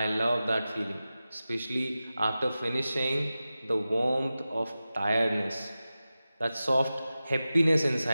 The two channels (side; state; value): both; inverted; correlation -0.94